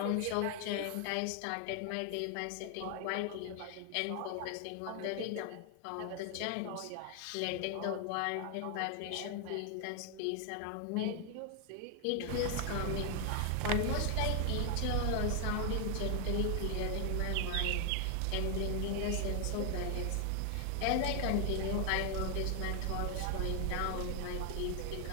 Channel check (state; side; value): different; both; correlation 0.00